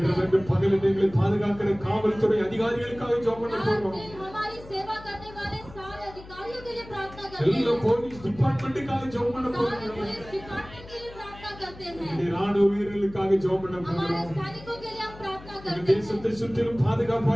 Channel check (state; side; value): noise; left; hum, 18 dB below the sound